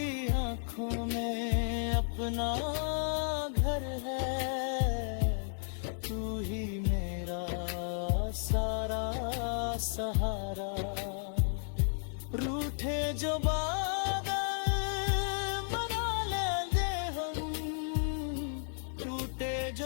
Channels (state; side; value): silent; right; digital silence